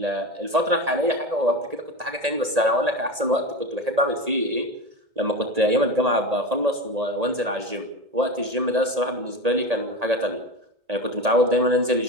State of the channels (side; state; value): left; late; 1.8 ms